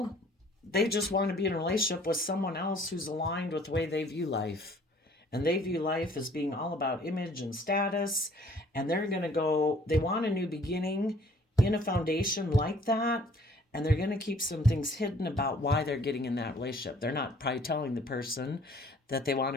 they just want to be in a relationship with someone else who's aligned with the way they view life. And they view life as being all about image and status. And they're going to go, they want a new beginning in a foundation like that. And they're going to keep some things hidden about why they're getting in that relationship. They're not probably telling the person that they want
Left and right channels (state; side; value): normal; both; correlation 0.56